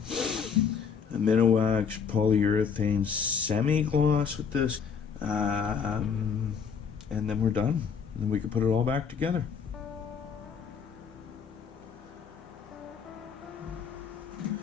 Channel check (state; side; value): quieter; right; 6.5 dB